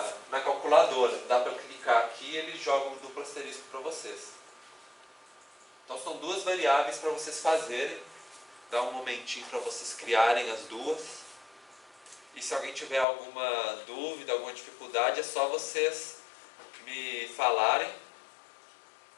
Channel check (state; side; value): drops out; right; at 13.1 s